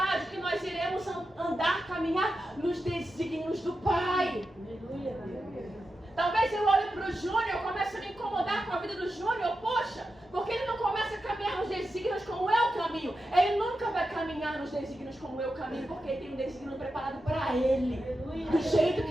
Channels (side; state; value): both; normal; correlation 0.90